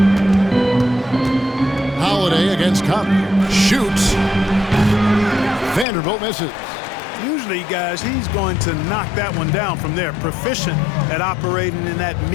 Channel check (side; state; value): right; drops out; at 5.9 s